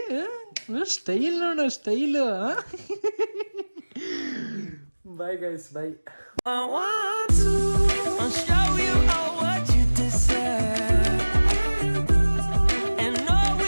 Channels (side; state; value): both; inverted; correlation -1.00